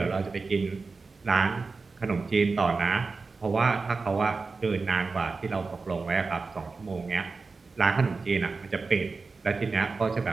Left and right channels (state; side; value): quieter; left; 4.2 dB